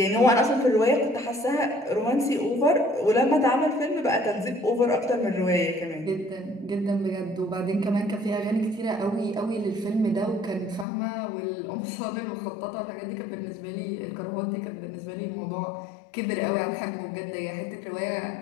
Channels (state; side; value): drops out; right; at 10.9 s